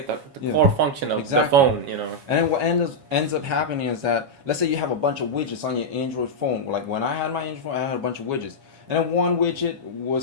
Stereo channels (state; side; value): late; left; 7.3 ms